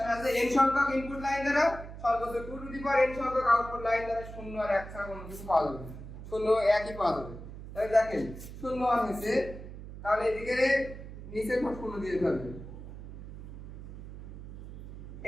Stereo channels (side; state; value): right; noise; hum, 12 dB below the sound